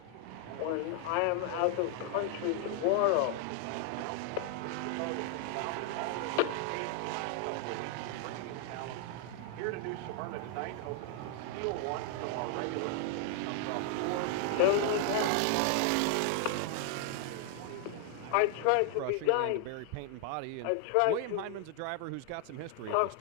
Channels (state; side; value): different; both; correlation 0.00